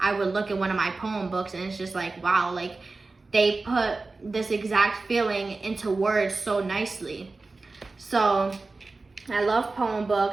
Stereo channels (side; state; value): left; quieter; 3.6 dB